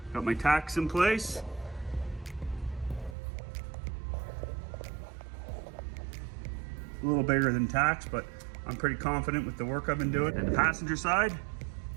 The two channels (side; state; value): left; drops out; at 3.2 s